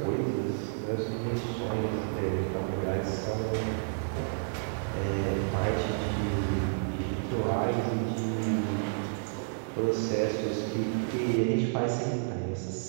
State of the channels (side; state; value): left; silent; digital silence